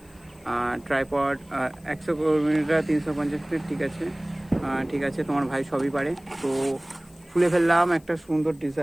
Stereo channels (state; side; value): noise; left; hiss, 28 dB below the sound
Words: ট্রাইপড 100 মিটার 350 ফিট, ঠিক আছে ঠিক আছে, তোমার ভাই সবই পারে। তো খুলে ফেললাম একটা সুন্দর